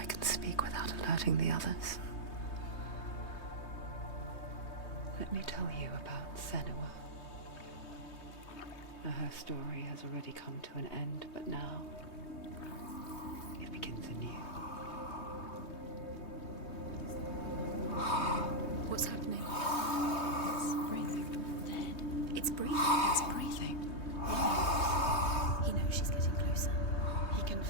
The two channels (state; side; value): late; right; 3.2 ms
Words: can speak without alerting the others. Let me tell you about Senua. Her story has already come to an end, but now it begins anew. What's happening? It's breathing. Dead. It's breathing. It's breathing. Why? He knows she's getting closer. He can